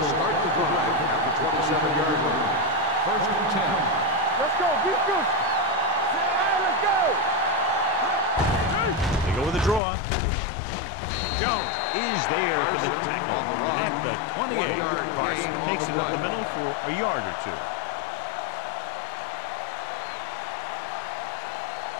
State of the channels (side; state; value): right; drops out; at 9.8 s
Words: start the drive at the 27-yard line. First and 10. Let's go. Beat Goose. Let's go. They go with a draw. Jones is there for the tackle at the 28. Carson takes it up the middle for a yard or two.